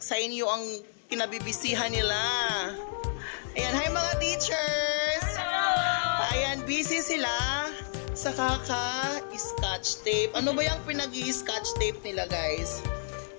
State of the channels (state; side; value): silent; right; 58 dB below the other